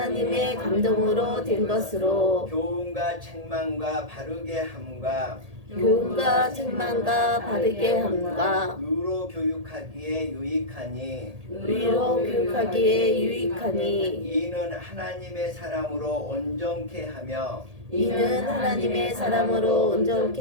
교훈과 책망과 바르게 함과 의로 교육하기에 유익하니 이는 하나님의 사람으로 온전케 하며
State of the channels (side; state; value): left; late; 1.8 ms